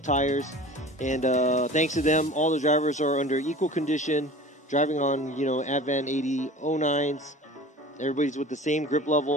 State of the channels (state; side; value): normal; both; correlation 0.40